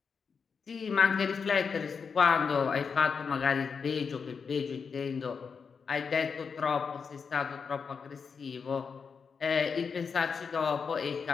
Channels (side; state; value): right; quieter; 5.8 dB